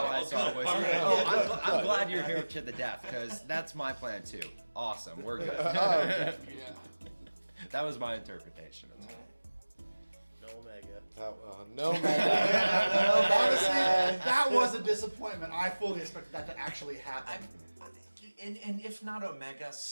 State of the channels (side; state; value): both; inverted; correlation -1.00